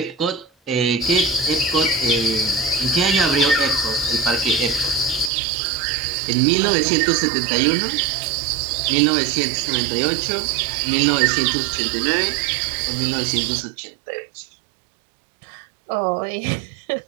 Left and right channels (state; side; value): drops out; left; at 5.3 s